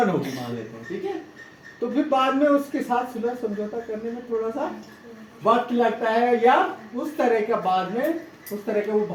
होगी मान लेते हैं, ठीक है, तो फिर बाद में उसके साथ सुलह समझौता करने में थोड़ा सा वक्त लगता है, या उस तरह का बाद में उस तरह के वो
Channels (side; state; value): both; identical; correlation 1.00